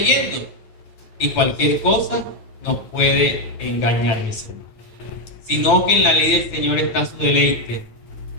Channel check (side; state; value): right; late; 9.2 ms